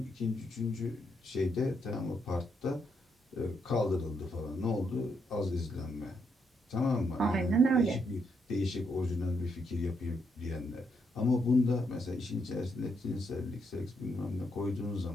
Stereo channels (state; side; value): normal; both; correlation 0.77